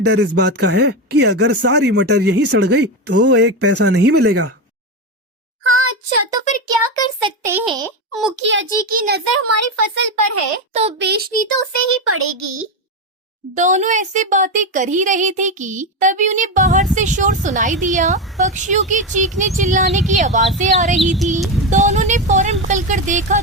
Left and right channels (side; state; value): both; normal; correlation 0.13